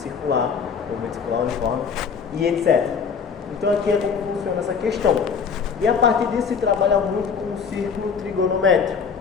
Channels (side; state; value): right; quieter; 6.1 dB